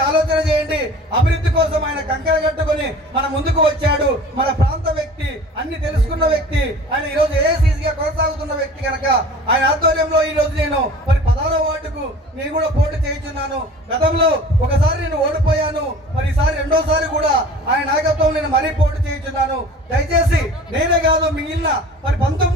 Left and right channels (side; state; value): both; normal; correlation 0.43